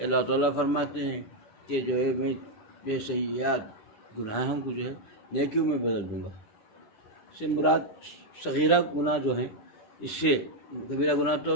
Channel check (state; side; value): late; right; 10 ms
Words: اللہ تعالیٰ فرماتے ہیں کہ جو ہے میں بے سیئات گناہوں کو جو ہے نیکیوں میں بدل دوں گا۔ اس سے مراد صغیرہ گناہ جو ہیں، اس سے کبیرہ گناہ تو